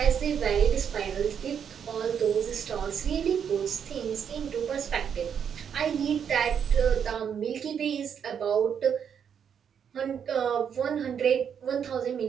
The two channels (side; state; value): left; quieter; 7.8 dB